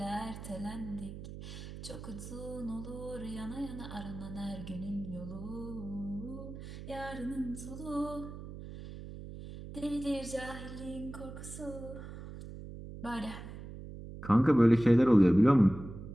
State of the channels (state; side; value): noise; right; hum, 11 dB below the sound